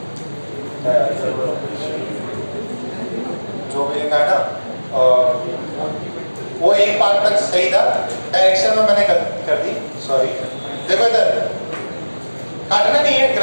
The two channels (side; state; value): both; inverted; correlation -1.00